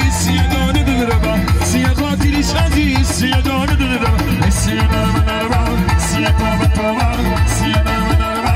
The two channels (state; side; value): identical; both; correlation 1.00